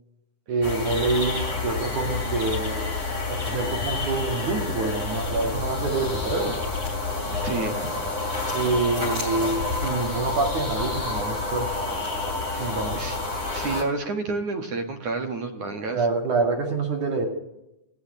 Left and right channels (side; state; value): left; late; 9.8 ms